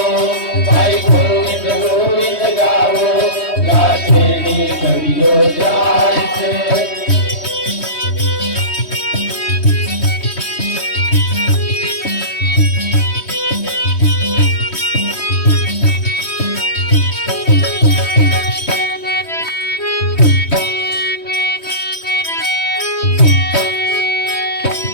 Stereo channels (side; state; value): right; late; 3.1 ms